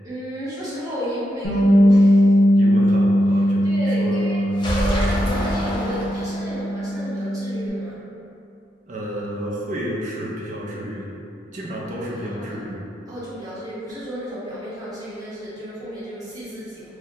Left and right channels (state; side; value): normal; both; correlation 0.85